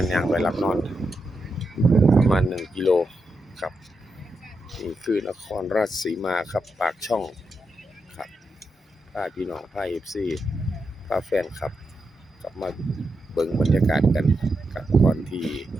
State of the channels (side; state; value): both; normal; correlation 0.85